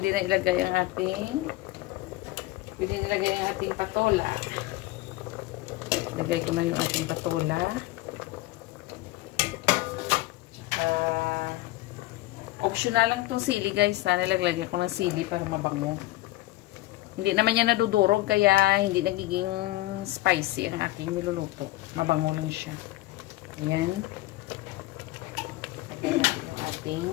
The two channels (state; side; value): quieter; right; 17.9 dB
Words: na ilagay ang ating patola. Ilagay ko na yung ating patola. Tsaka, optional lang itong sili, guys. Sana naglagay ko ng sili para mabango. Hindi naman yan nadudurog, kaya hindi nagiging spicy ang aking niluluto. Mabango lang siya. Ayan. Lagay natin yung ating